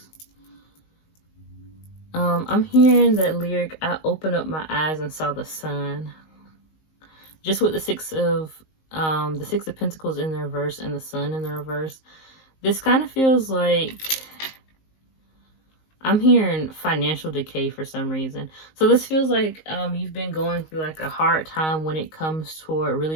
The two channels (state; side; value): late; right; 19 ms